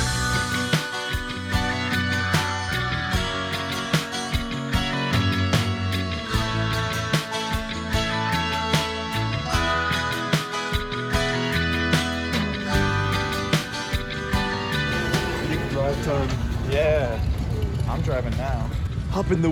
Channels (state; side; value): identical; both; correlation 1.00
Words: Drive time. Yeah, I'm driving now. Hop in the